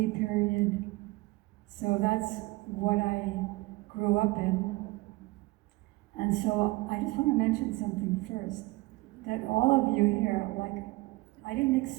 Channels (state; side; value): quieter; left; 22.0 dB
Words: period. So that's what I grew up in. And so I just want to mention something first, that all of you here, I didn't